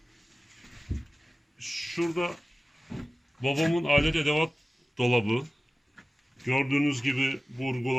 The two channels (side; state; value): both; normal; correlation 0.96